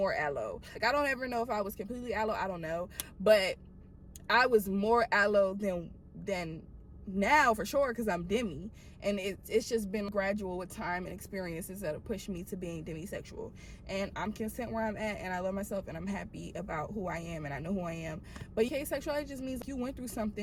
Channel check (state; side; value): identical; both; correlation 1.00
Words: allo. Like, I don't ever know if I was completely allo, I don't know, but I was more allo than now for sure, because I'm demi, and it's just been gradual with time and experiences that have pushed me to being demisexual, and I'm content where I'm at, and I love myself, and I'm happy about who I am, and I know who I am. But asexuality just means you went through